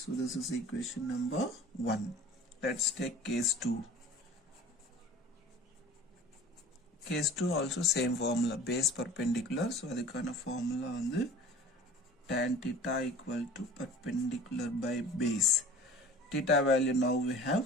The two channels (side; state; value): both; normal; correlation 0.42